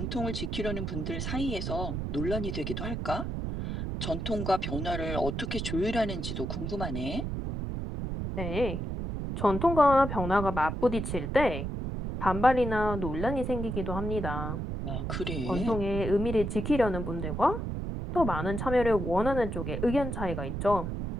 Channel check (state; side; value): noise; right; rumble, 3 dB below the sound